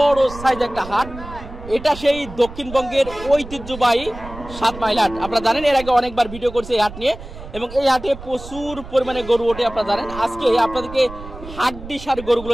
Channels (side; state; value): right; noise; rumble, 14 dB below the sound